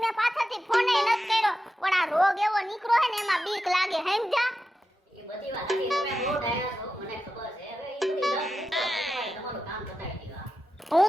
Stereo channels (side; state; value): both; normal; correlation 0.90